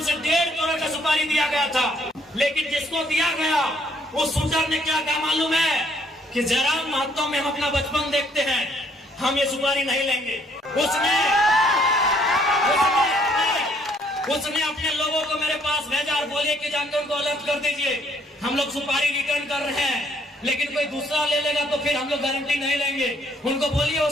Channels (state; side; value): normal; both; correlation 0.65